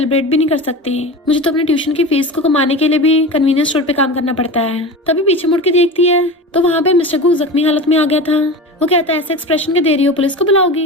भी नहीं कर सकती। मुझे तो अपने ट्यूशन की फीस को कमाने के लिए भी कन्वीनियंस स्टोर पे काम करना पड़ता है। तभी पीछे मुड़ के देखती है तो वहाँ पे मिस्टर गो जख्मी हालत में आ गया था। वो कहता है ऐसे एक्सप्रेशन के दे रही हो पुलिस को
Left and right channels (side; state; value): both; normal; correlation 0.29